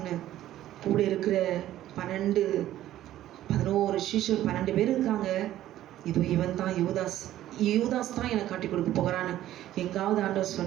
கூட இருக்கிற 11 சீஷர் 12 பேர் இருக்காங்க, இதோ இவன் தான் யூதாஸ் தான் எனக்கு காட்டி கொடுக்க போகிறான்னு எங்காவது ஆண்டவர்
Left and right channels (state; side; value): quieter; left; 13.4 dB